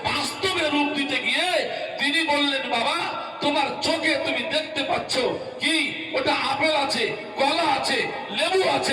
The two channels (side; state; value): both; identical; correlation 1.00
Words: বাস্তবে রূপ দিতে গিয়ে তিনি বললেন, বাবা তোমার চোখে তুমি দেখতে পাচ্ছ কি ওটা আপেল আছে, কলা আছে, লেবু